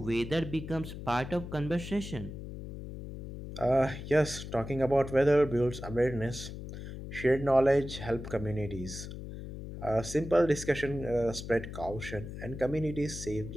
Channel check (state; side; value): noise; left; hum, 10 dB below the sound